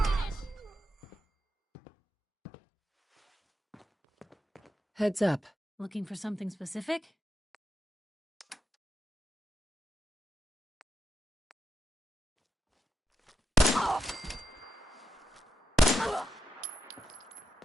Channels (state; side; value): normal; both; correlation 0.86